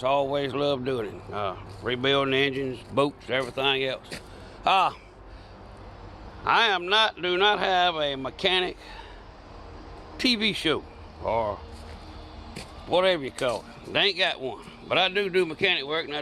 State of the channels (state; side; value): identical; both; correlation 1.00